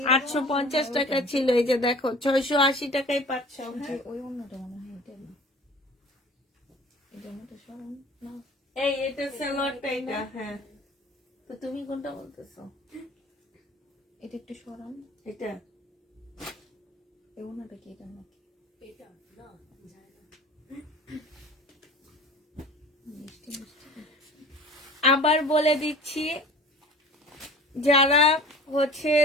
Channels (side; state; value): both; normal; correlation 0.43